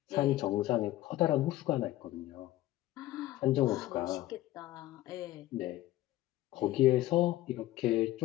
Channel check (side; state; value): right; quieter; 15.6 dB